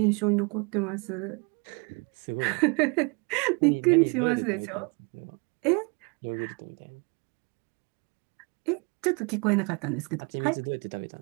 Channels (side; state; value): left; quieter; 32.2 dB